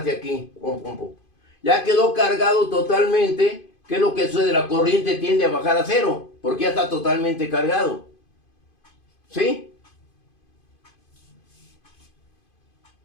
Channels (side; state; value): right; late; 2.5 ms